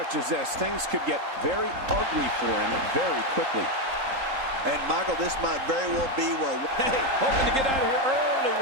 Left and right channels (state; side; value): late; left; 3.8 ms